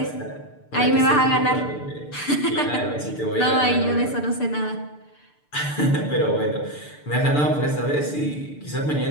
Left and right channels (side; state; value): right; late; 6.8 ms